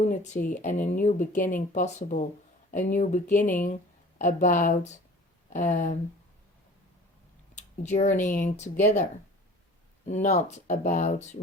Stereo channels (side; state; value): both; normal; correlation 0.45